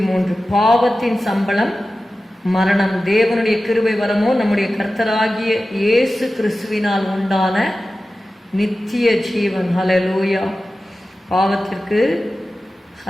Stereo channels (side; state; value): both; normal; correlation 0.94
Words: பாவத்தின் சம்பளம் மரணம், தேவனுடைய கிருபை வரமோ நம்முடைய கர்த்தராகிய இயேசு கிறிஸ்துவினால் உண்டான நித்திய ஜீவன். ஹல்லேலூயா. பாவத்திற்கு